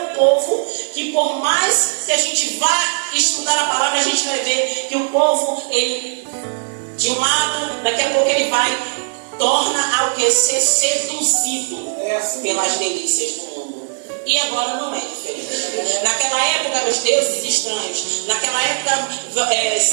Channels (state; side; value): silent; left; 67 dB below the other